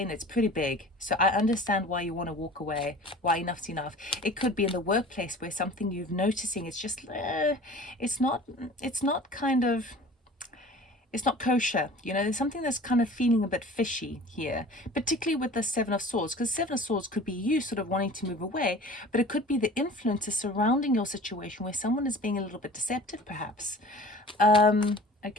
it's pretty big, so I understand why you want to walk away, why enough's enough. It could be in the workplace where something you've noticing, it's just it's not kind of, it's not kosher, you know. There's something that's kind of feeling a bit fishy here, particularly with the Seven of Swords, because Seven of Swords could be you sort of wanting to move away, but it could be the influences surrounding your situation where someone is being a little bit deceptive, perhaps.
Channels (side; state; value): both; normal; correlation 0.43